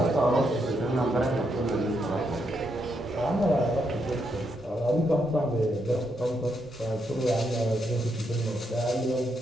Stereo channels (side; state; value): both; normal; correlation 0.79